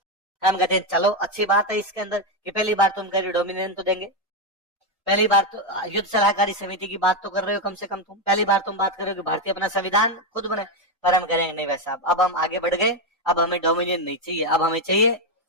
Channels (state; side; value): normal; both; correlation 0.06